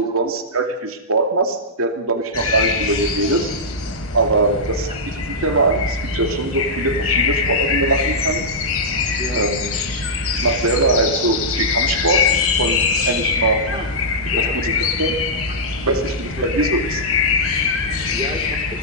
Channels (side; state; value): both; normal; correlation -0.11